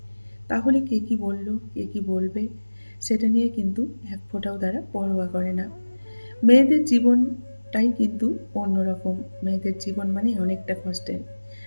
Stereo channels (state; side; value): inverted; both; correlation -1.00